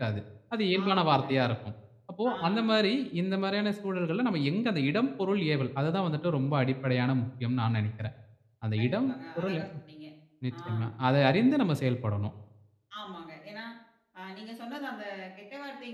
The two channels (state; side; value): identical; both; correlation 1.00